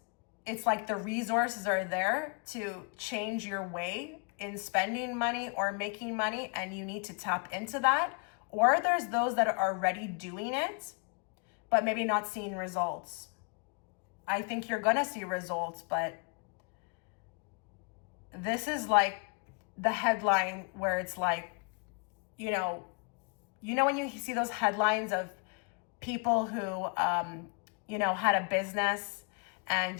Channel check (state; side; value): quieter; right; 36.8 dB